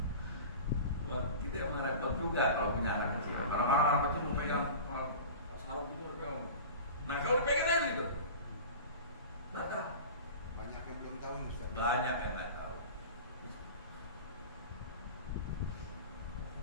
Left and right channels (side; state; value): both; inverted; correlation -0.35